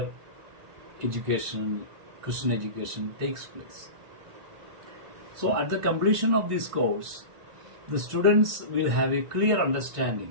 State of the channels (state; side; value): late; left; 1.5 ms